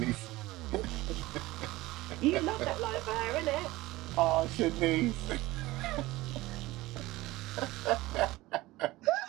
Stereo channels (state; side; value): quieter; left; 18.9 dB